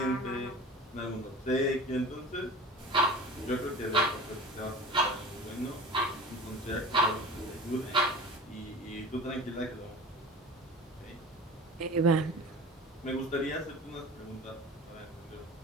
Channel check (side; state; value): both; normal; correlation 0.36